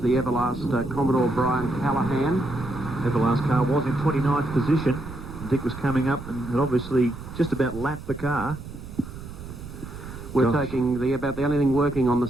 Everlast Commodore Brian Callahan. Everlast car was in 29th position. Dick was coming up and had obviously just about lapped the car. We're taking about the only thing working on the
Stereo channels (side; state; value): right; noise; rumble, 12 dB below the sound